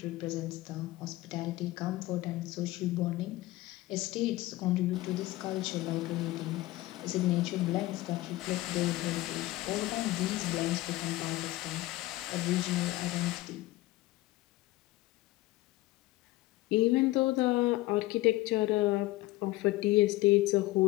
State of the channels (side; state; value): right; quieter; 18.2 dB